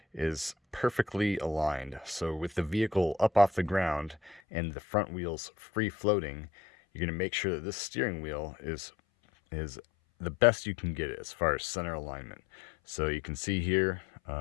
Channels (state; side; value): drops out; right; at 4.4 s